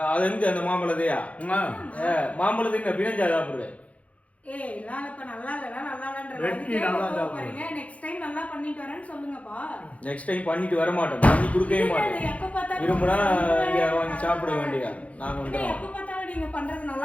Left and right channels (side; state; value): right; late; 0.065 ms